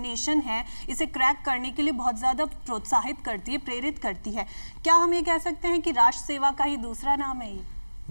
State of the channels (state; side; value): inverted; both; correlation -1.00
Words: है इसे क्रैक करने के लिए बहुत ज़्यादा प्रोत्साहित करती है, प्रेरित करती है। क्या हम ये कह सकते हैं कि राष्ट्र सेवा का ही दूसरा नाम है ये?